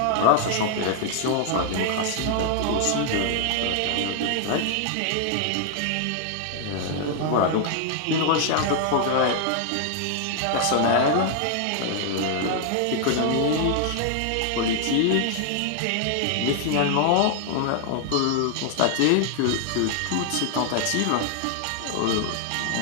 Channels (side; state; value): both; different; correlation 0.00